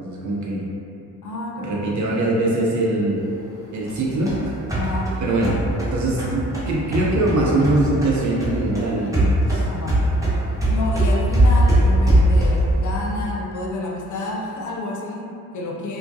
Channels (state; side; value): normal; both; correlation 0.62